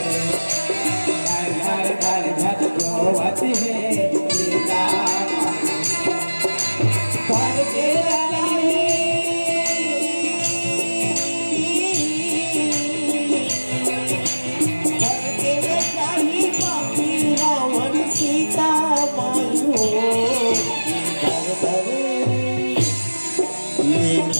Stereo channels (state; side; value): inverted; both; correlation -1.00